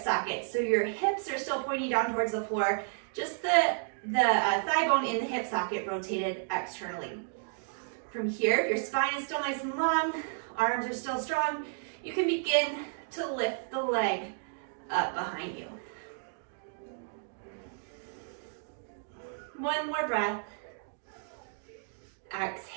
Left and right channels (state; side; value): silent; left; digital silence